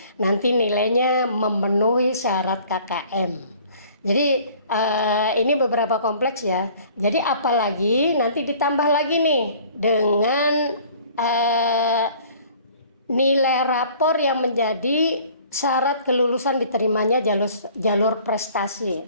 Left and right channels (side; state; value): both; inverted; correlation -0.52